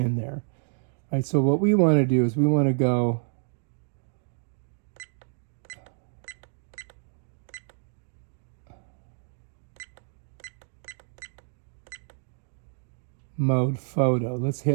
there. All right, so what we want to do is we want to go mode photo. Let's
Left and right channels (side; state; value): left; silent; digital silence